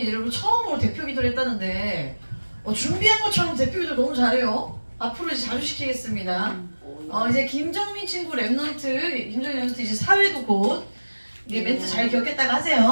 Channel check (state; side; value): inverted; both; correlation -1.00